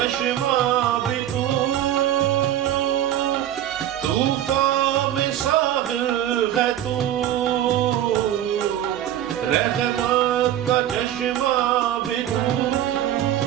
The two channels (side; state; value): left; quieter; 11.8 dB